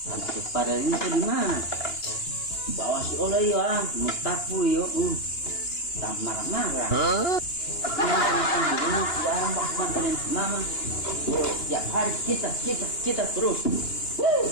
Untuk pada ini tuh di mana? Bawa si oleh ya, mutapu yo. Tak marah-marah. Mama, tiap hari kita terus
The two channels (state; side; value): late; right; 2.9 ms